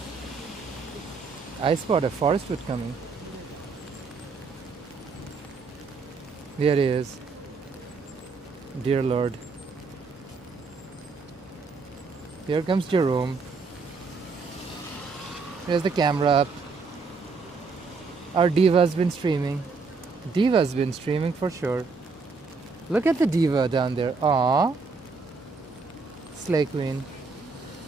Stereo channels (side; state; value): left; quieter; 4.5 dB